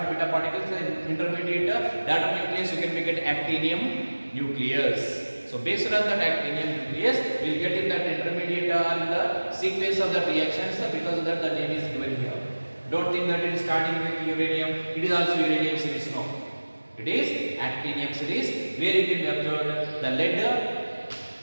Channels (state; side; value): inverted; both; correlation -1.00